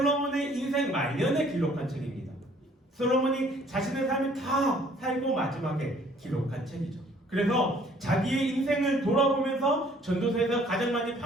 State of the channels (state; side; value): normal; both; correlation 0.58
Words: 인생 말년에 기록한 책입니다. 솔로몬이 자신의 삶을 다 살고 마지막에 기록한 책이죠. 그래서 자기의 인생을 돌아보면서 전도서에서 가장 많이